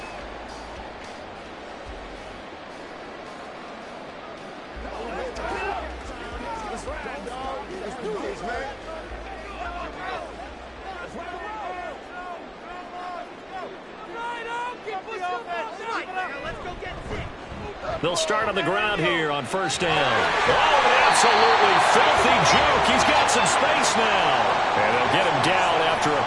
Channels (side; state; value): both; identical; correlation 1.00